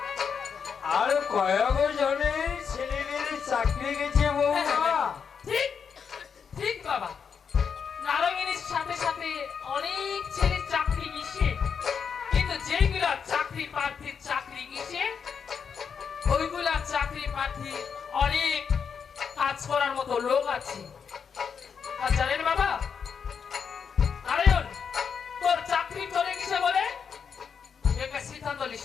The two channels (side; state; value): right; quieter; 6.6 dB